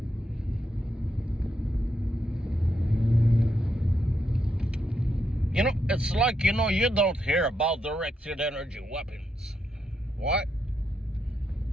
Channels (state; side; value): normal; both; correlation 0.81